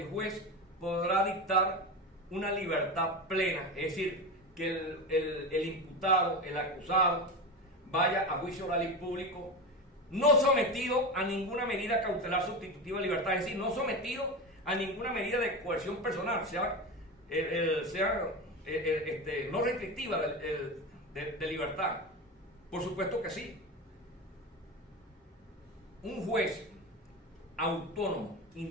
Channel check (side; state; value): both; normal; correlation 0.22